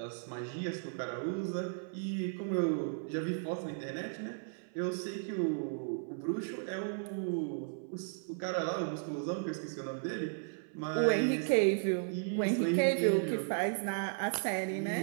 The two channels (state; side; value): silent; left; 54 dB below the other